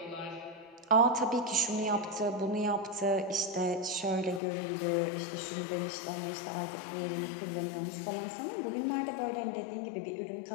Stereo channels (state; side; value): drops out; right; at 4.4 s